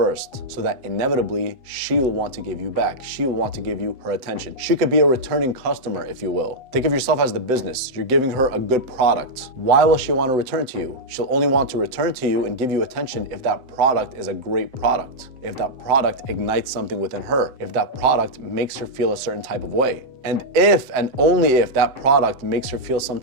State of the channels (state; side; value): late; left; 7.8 ms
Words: so that inevitably she will want to give you back. She will want to give you her attention. She could be a returning customer, if you will. Think of yourself as the business. You're giving her a good product. Why will she want to return to you? She'll only want to return to you and give you attention if that product is a great product. If that product ignites something within her. If that product makes her feel a certain type of way. And if and only if that product makes her feel some